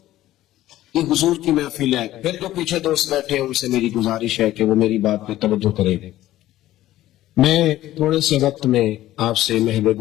یہ حضور کی محفل ہے. پھر جو پیچھے دوست بیٹھے ہیں ان سے میری گزارش ہے کہ وہ میری بات پہ توجہ کریں. میں تھوڑے سے وقت میں آپ سے محو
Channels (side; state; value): right; quieter; 14.7 dB